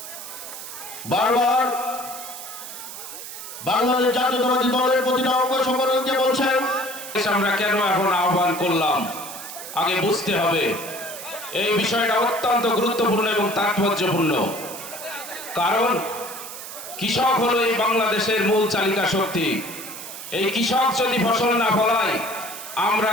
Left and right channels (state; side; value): noise; right; hiss, 11 dB below the sound